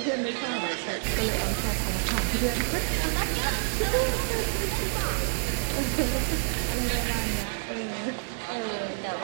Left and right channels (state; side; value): silent; left; digital silence